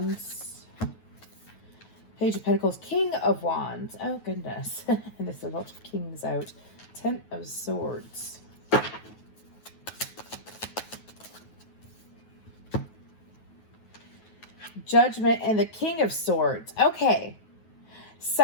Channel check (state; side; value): late; right; 9.3 ms